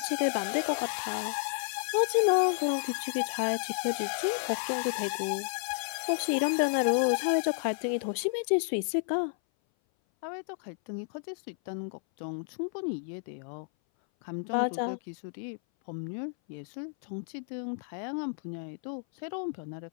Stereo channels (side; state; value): right; silent; 57 dB below the other